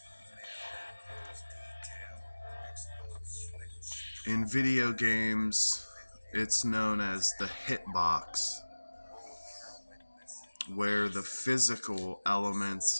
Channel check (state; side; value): inverted; both; correlation -1.00